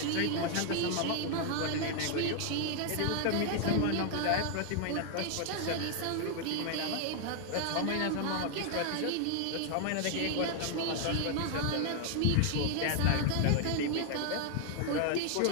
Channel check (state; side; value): different; both; correlation 0.00